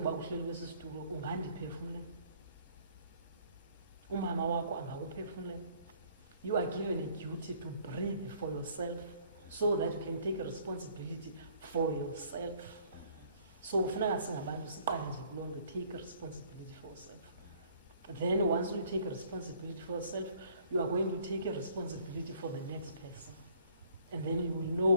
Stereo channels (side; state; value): both; inverted; correlation -0.59